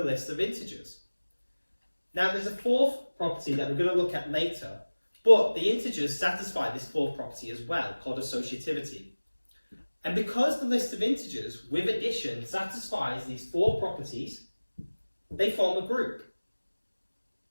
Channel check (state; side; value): inverted; both; correlation -1.00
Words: list of integers. Now there's a fourth property that we're going to look at later, but the integers satisfy this fourth property as well, called associativity. And because the list of integers with addition satisfies these four properties, they form a group.